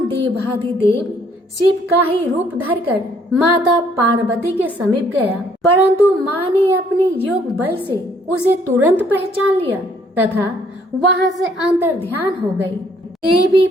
देवाधिदेव शिव का ही रूप धरकर माता पार्वती के समीप गया, परंतु माँ ने अपने योग बल से उसे तुरंत पहचान लिया तथा वहां से अंतर ध्यान हो गई। देवी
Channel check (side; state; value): both; normal; correlation 0.64